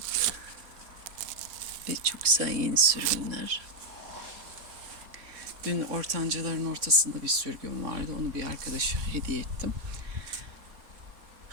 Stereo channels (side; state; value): left; late; 3.5 ms